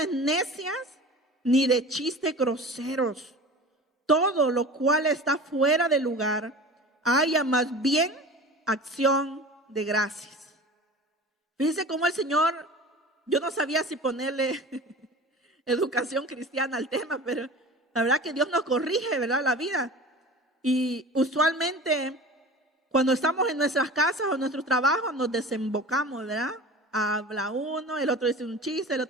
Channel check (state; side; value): normal; both; correlation 0.37